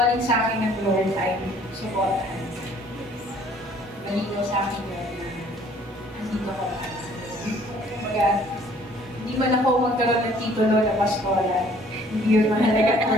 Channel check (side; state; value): both; normal; correlation 0.57